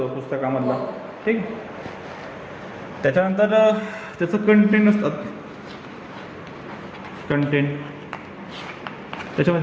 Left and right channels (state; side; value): identical; both; correlation 1.00